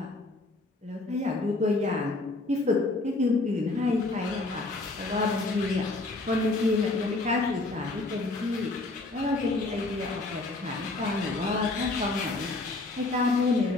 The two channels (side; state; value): right; quieter; 3.1 dB